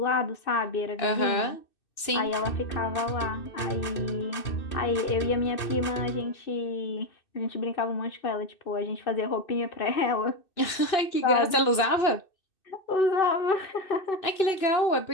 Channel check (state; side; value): late; right; 2.6 ms